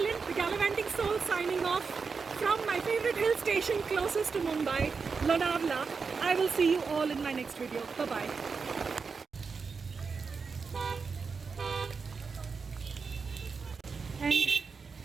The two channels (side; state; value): left; quieter; 5.1 dB